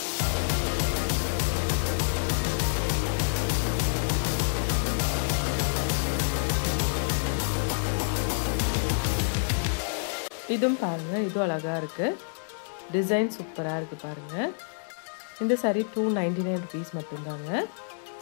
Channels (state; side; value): silent; right; digital silence